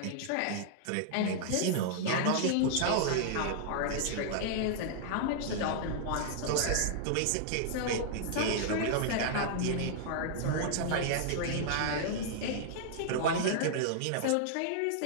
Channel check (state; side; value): different; both; correlation -0.01